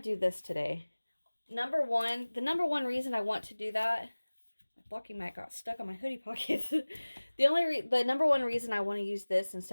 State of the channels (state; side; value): inverted; both; correlation -1.00